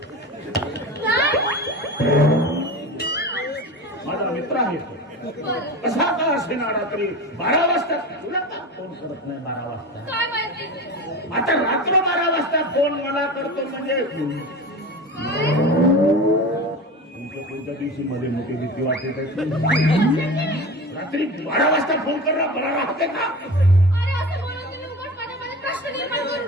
माझा मित्र आहे तो बरं कसा का असे ना रात्री 12 वाजता तुला का फोन करत नाही 12 वाजता काय माहिती आता रात्र 12 वाजता फोन मला करतो म्हणजे काय तुमच्या कोणत्या दिवशी मध्ये मोठी भीती वाटते त्याची रात्री 12 वाजता फोन करा बरा राहते का अरे असं बोलून तुम्ही उगाच माझ्यामध्ये प्रश्न निर्माण करू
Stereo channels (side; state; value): both; normal; correlation 0.30